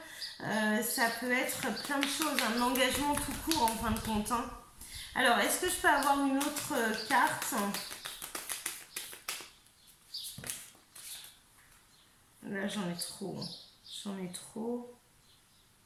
Ça peut être plein de choses. Un engagement tout court, en fin de compte. Hein. Alors, est-ce que je peux avoir une autre carte? Là, j'en ai trop. J'en ai trop.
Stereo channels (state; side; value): identical; both; correlation 1.00